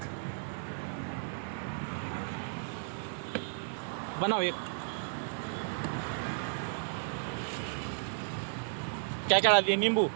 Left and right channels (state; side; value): silent; left; digital silence